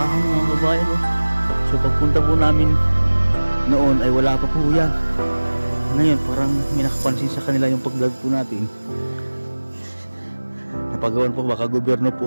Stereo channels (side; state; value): both; inverted; correlation -1.00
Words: mga kabayan. Oh. So pagpunta po namin noon ay wala pa po yan. Ngayon parang may nakapansin sa kanila yung pag-vlog po natin. Napagawan po, baka gobyerno